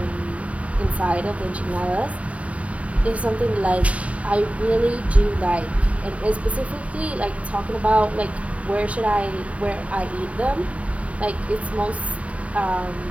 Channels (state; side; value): late; left; 0.066 ms